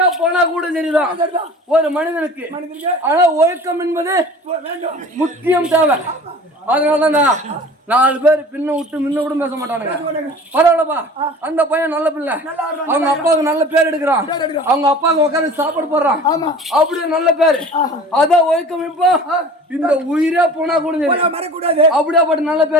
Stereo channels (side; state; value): both; normal; correlation 0.42